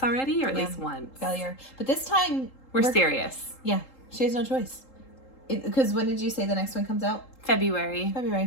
already, or at least once. Failure. But this time, we're serious. Yeah, she has no choice. Because when did you say the next one comes out? February.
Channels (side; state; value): right; late; 3.8 ms